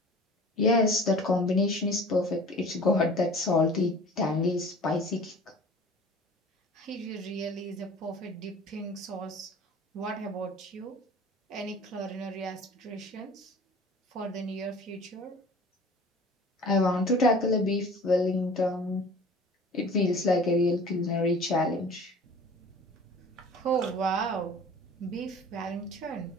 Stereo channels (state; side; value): normal; both; correlation 0.44